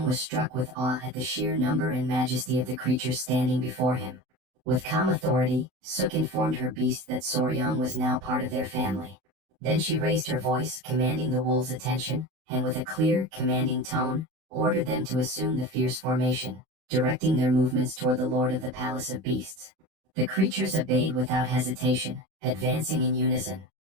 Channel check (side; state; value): left; late; 32 ms